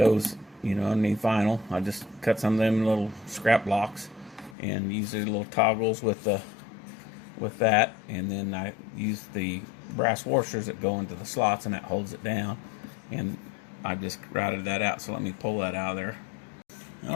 underneath vinyl. I just cut some of them little scrap blocks and use the little toggles with that, and then I use the brass washers that go into the slots, and that holds it down. And I just routed that out. So let me pull that out of there.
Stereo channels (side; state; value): right; drops out; at 4.5 s